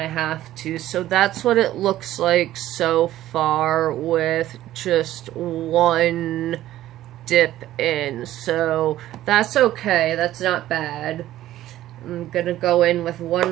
have to. So that's what it looks like so far with just one dip in. So that's okay. That's not bad. I'm gonna go in with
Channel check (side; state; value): left; quieter; 13.9 dB